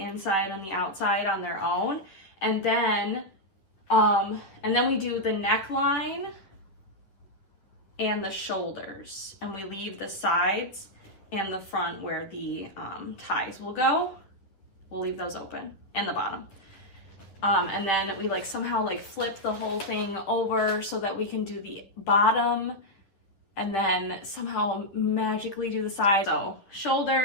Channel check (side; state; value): right; late; 10 ms